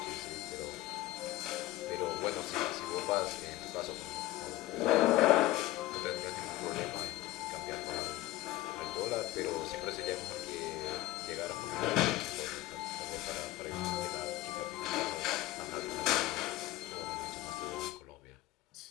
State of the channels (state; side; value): quieter; right; 16.5 dB